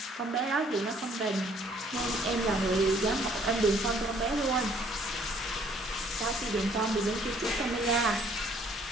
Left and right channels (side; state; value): both; normal; correlation 0.61